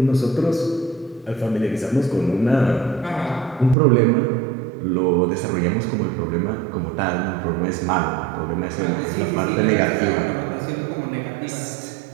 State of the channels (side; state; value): left; drops out; at 3.8 s